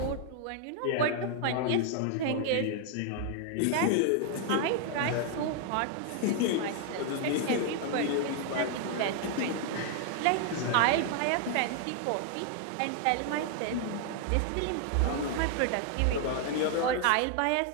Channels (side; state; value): both; different; correlation 0.00